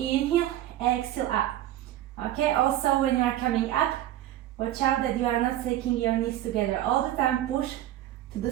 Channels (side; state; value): left; quieter; 13.4 dB